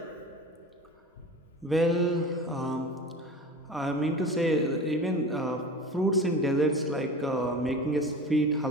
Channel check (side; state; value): both; normal; correlation 0.34